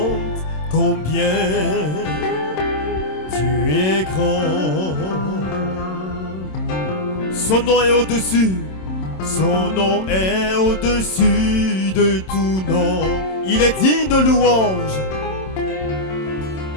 combien tu es grand. Son nom est au-dessus. Son nom est au-dessus de tout nom. Il est digne de louange.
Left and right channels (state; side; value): late; right; 27 ms